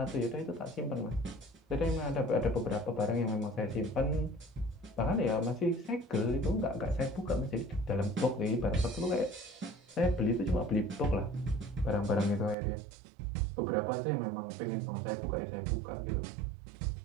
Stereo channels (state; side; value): drops out; left; at 12.6 s